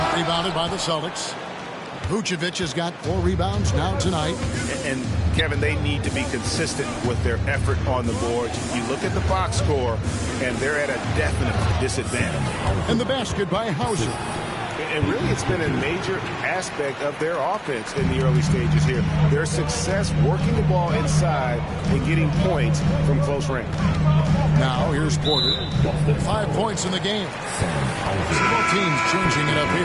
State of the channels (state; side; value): identical; both; correlation 1.00